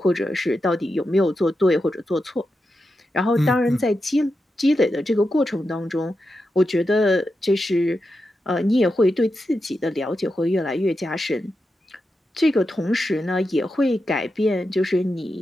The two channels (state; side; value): normal; both; correlation 0.88